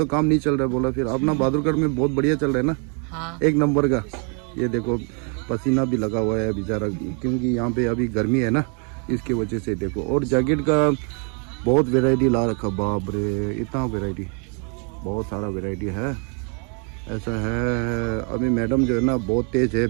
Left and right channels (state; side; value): quieter; left; 38.6 dB